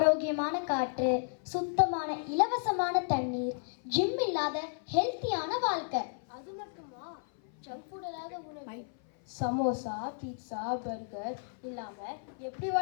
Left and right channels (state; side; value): silent; right; 56 dB below the other